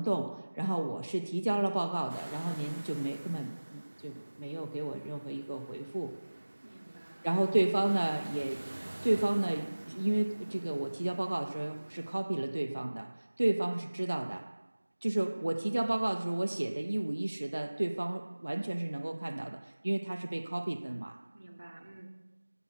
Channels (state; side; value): inverted; both; correlation -1.00